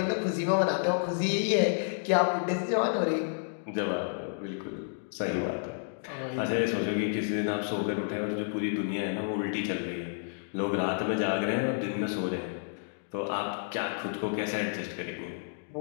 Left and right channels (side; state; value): right; silent; digital silence